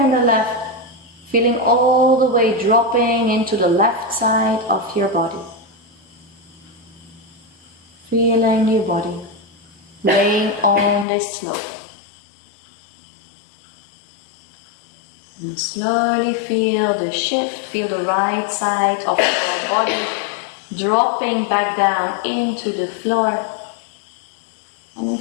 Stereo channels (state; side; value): drops out; right; at 11.1 s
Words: the left, feeling all the way dropping into the left side of your body. Feeling your body laying on this slope. And slowly feel the shift, feel the right side of your body dropping back down into the floor. And